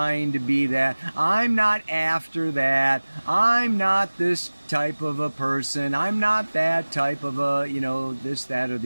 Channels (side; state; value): both; inverted; correlation -1.00